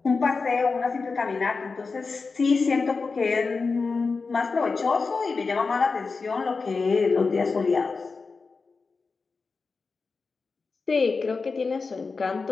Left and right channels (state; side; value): quieter; right; 4.4 dB